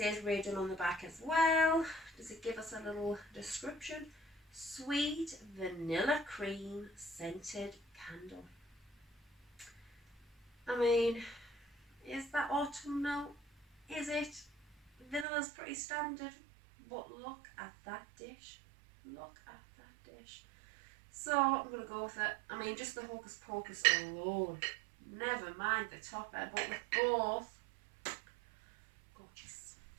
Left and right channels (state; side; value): drops out; left; at 15.2 s